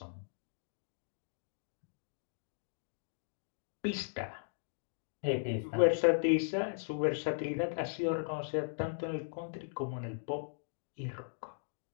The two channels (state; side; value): silent; right; digital silence